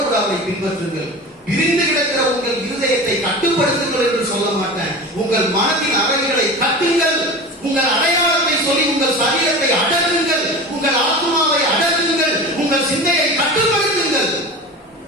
கூட அவரை பின்பற்றுங்கள். பிரிந்து கிடக்கிற உங்கள் இருதயத்தை கட்டுப்படுத்துங்கள் என்று சொல்ல மாட்டேன். உங்கள் மனதின் அறைகளை கட்டுங்கள். உங்கள் அடையாளத்தை சொல்லி உங்கள் சரீரத்தை அடக்குங்கள். உங்கள் ஆத்மாவை அடக்குங்கள். உங்கள் சிந்தையை கட்டுப்படுத்துங்கள்.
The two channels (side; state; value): both; normal; correlation 0.32